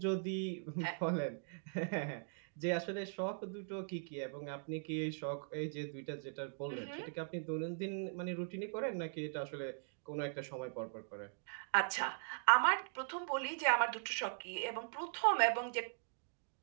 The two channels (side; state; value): left; silent; digital silence